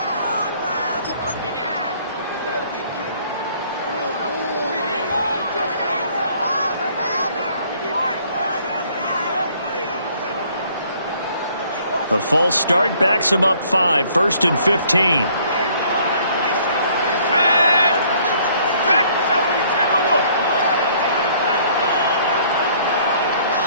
The false start backs him up 5, 1st and 15.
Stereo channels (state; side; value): inverted; both; correlation -0.60